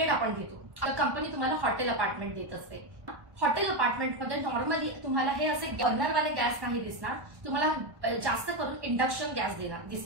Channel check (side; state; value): left; late; 1.2 ms